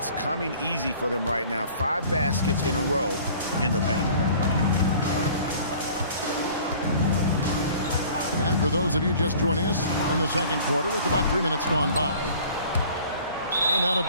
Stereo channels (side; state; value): both; inverted; correlation -0.49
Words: coming easy for them right now. 5 baskets in a row in the paint. And for those of you just joining us in the second quarter with about 3 minutes gone by. And out of